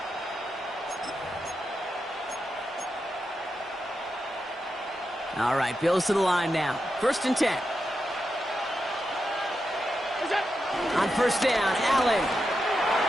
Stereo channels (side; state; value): both; normal; correlation 0.87